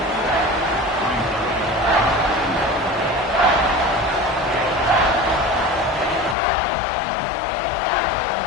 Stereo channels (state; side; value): drops out; right; at 6.4 s